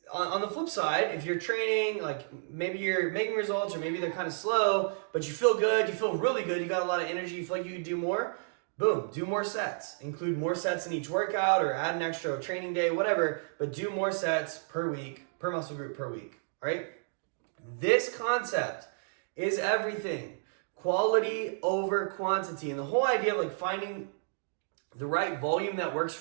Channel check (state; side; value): silent; left; digital silence